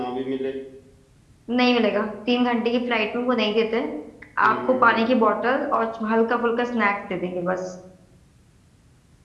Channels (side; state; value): both; identical; correlation 1.00